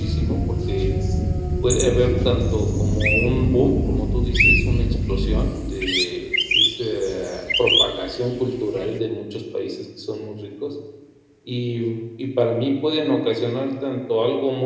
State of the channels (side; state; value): both; identical; correlation 1.00